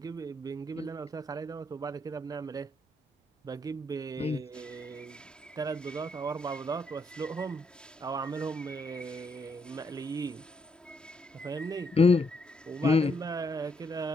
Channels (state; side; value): normal; both; correlation 0.75